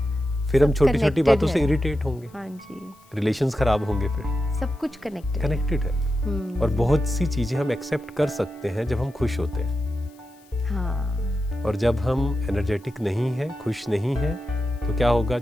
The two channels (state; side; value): noise; left; hiss, 30 dB below the sound